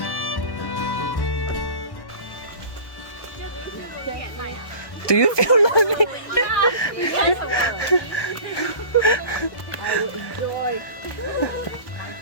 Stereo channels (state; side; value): late; right; 1.2 ms